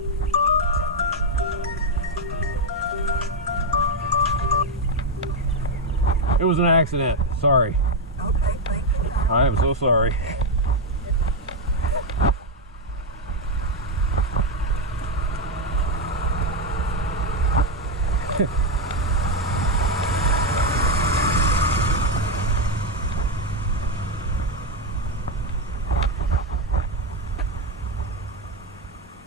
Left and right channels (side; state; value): both; normal; correlation 0.04